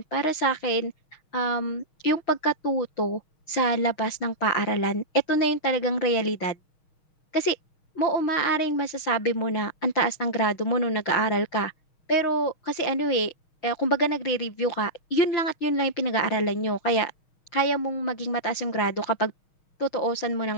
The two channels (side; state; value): right; late; 6.3 ms